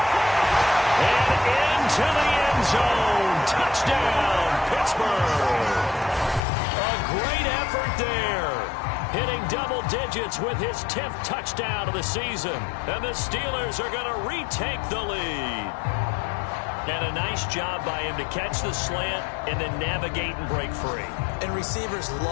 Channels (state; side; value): drops out; right; at 6.4 s